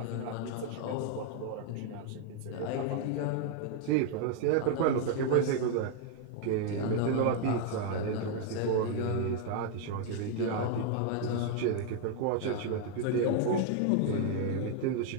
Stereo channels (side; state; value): both; different; correlation 0.00